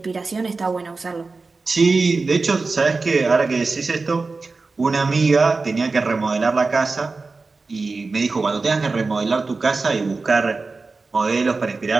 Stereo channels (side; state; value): left; quieter; 3.9 dB